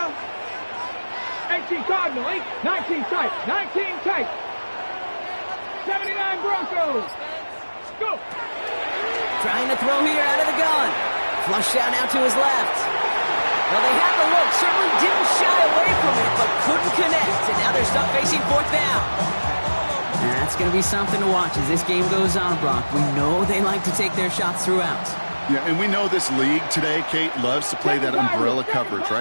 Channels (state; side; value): inverted; both; correlation -1.00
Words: 18 Cardinal, 19 tight, 19 tight. 79 Broncos. Go. Trying to throw here out of the gun. Flushed out now to his left. Well, they had the look. Certainly didn't shy away from it, but couldn't connect. And now they're stuck facing 4th down. That's It's going to be something to watch as this game goes on, Brock. We know they like to take their shots throughout. Yeah, and we know this league today, Kate, loves to play that umbrella coverage,